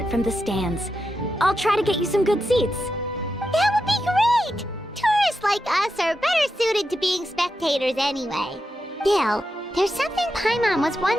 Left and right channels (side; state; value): both; normal; correlation 0.87